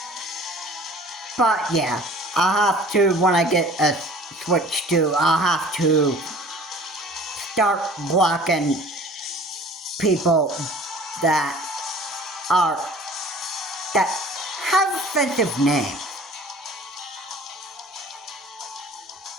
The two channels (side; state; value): both; normal; correlation 0.47